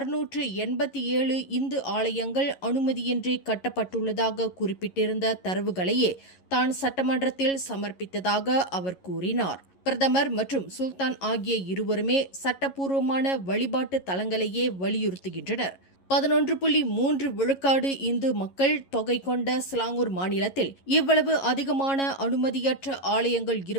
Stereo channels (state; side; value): late; right; 11 ms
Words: இந்து ஆலயங்கள் அனுமதியின்றி கட்டப்பட்டுள்ளதாக குறிப்பிட்டிருந்த தரவுகளையே தான் சட்டமன்றத்தில் சமர்ப்பித்ததாக அவர் கூறினார். பிரதமர் மற்றும் சுல்தான் ஆகிய இருவருமே சட்டப்பூர்வமான வழிபாட்டு தலங்களையே வலியுறுத்துகின்றனர். 11.3 விழுக்காடு இந்து மக்கள் தொகை கொண்ட ஸ்லாங்கூர் மாநிலத்தில் இவ்வளவு அதிகமான அனுமதியற்ற ஆலயங்கள்